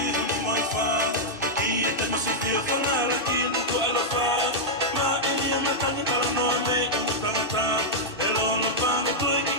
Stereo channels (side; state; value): right; late; 2.6 ms